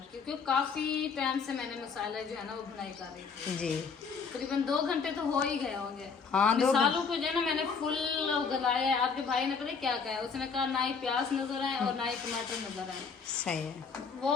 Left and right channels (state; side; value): quieter; right; 5.5 dB